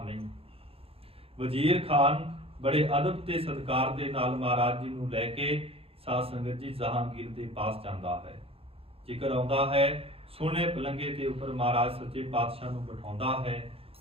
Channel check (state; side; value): late; left; 0.28 ms